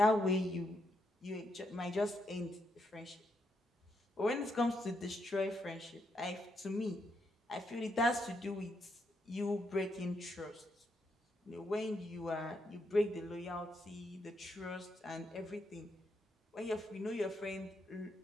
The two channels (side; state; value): both; normal; correlation 0.79